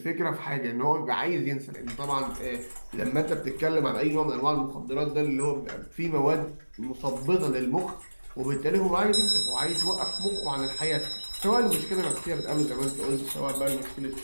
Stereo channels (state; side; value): inverted; both; correlation -1.00